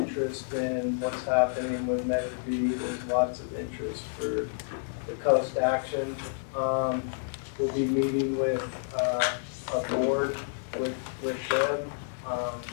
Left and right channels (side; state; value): right; silent; digital silence